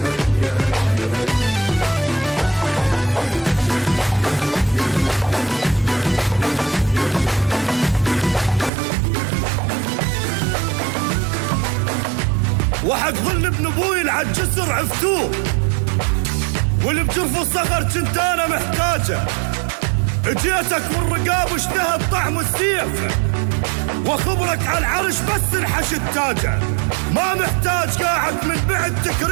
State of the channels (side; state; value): left; drops out; at 8.7 s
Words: وحق ظل ابن ابوي العالجسر عفتوه، واللي بجرف الصغر كنت انا محتاجه. اجيتك والرقاب اشتهت طعم السيف، وخبرك على العرش بس انحش التاجه. ما محتاج قاعد من بعد